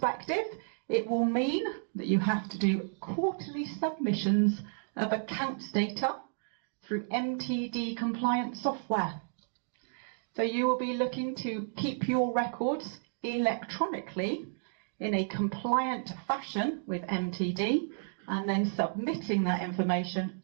it will mean that you have to do quarterly submissions of accounts data through MTD compliant software. So you will be looking to keep your records electronically in a compliant fashion with MTD, and then submitting that information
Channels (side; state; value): left; silent; digital silence